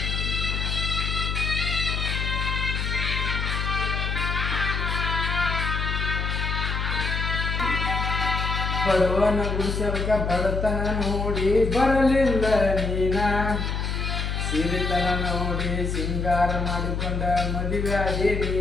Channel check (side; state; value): left; noise; hum, 1 dB below the sound